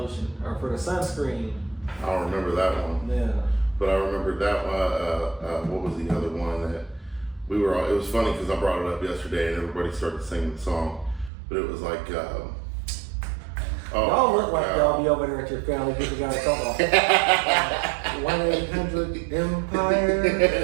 or for the sunscreen? I don't remember that one. Yeah. But I remember that one. What was the other one that we were all? It was funny because I brought it up yesterday and everybody started singing the song. But it was like, y'all look like y'all be over there at your family get together talk about 1-800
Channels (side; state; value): left; drops out; at 11.3 s